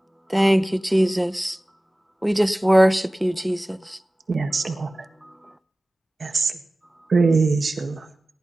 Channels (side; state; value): both; normal; correlation 0.97